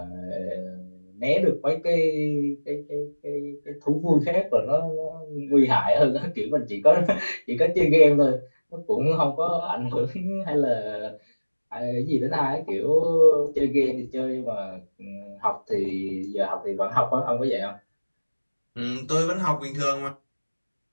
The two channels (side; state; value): both; inverted; correlation -1.00